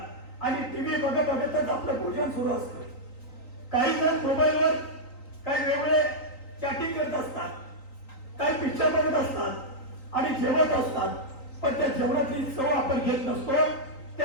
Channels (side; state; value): right; late; 3.9 ms